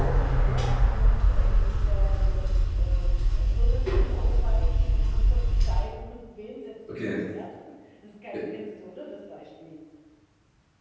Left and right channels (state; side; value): identical; both; correlation 1.00